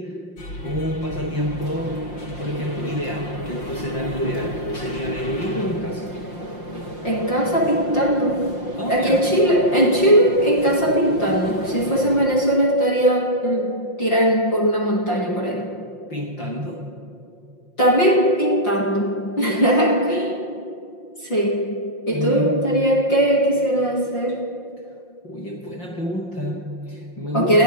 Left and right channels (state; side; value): late; right; 5.7 ms